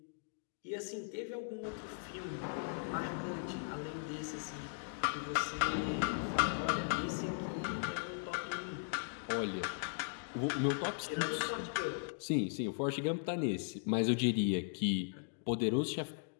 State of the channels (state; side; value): silent; right; digital silence